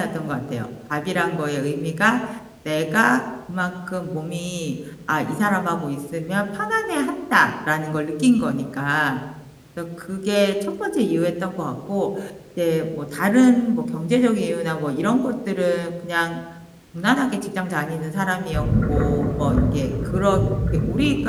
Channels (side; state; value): both; identical; correlation 1.00